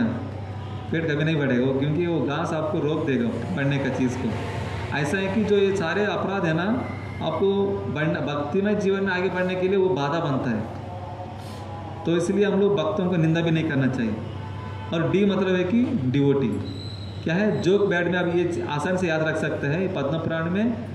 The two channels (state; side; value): identical; both; correlation 1.00